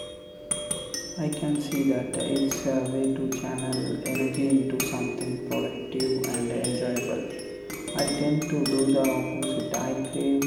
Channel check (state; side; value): identical; both; correlation 1.00